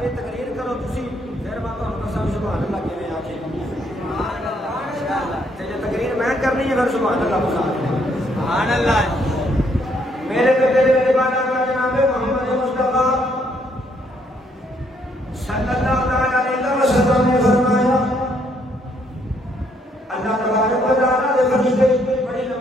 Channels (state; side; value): normal; both; correlation 0.70